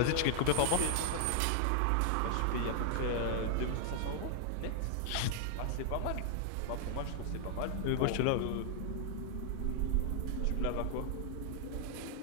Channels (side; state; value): both; different; correlation 0.00